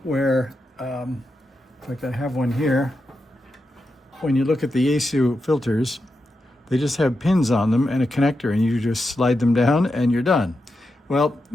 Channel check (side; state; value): both; normal; correlation 0.87